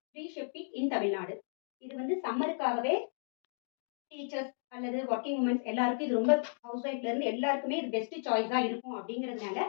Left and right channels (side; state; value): right; silent; digital silence